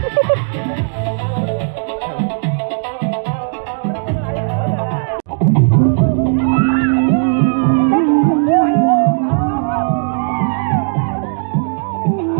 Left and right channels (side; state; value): left; silent; digital silence